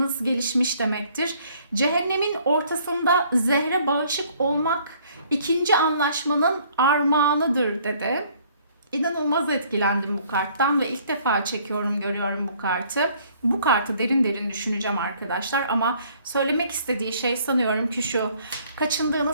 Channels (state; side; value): inverted; both; correlation -0.60